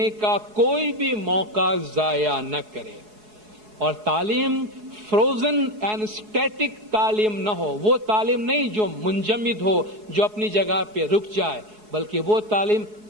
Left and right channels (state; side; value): late; left; 4.7 ms